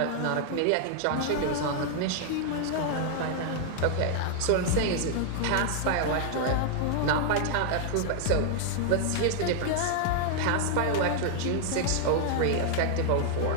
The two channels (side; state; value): both; different; correlation -0.01